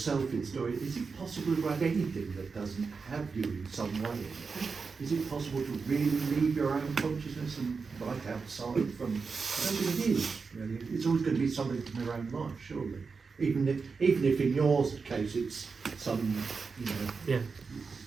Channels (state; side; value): quieter; left; 4.9 dB